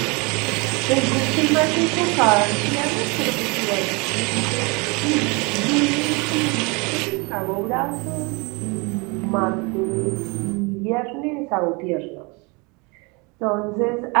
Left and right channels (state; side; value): quieter; left; 28.9 dB